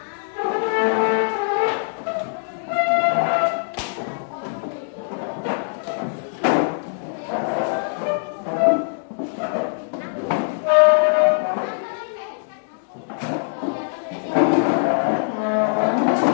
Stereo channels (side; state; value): right; silent; digital silence